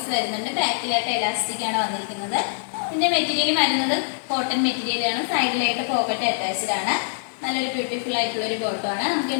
വരുന്നുണ്ട്. ബാക്കിലായിട്ട് എലാസ്റ്റിക് ആണ് വന്നിരിക്കുന്നത്. ഇതിന്റെ മെറ്റീരിയൽ വരുന്നത് കോട്ടൺ മെറ്റീരിയൽ ആണ്. സൈഡിലായിട്ട് പോക്കറ്റ് അറ്റാച്ച്ഡ് ആണ്. നല്ലൊരു ബ്യൂട്ടിഫുൾ ആയിട്ടുള്ള ഒരു ബോട്ടം ആണ്. നമുക്ക്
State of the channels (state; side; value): silent; right; 63 dB below the other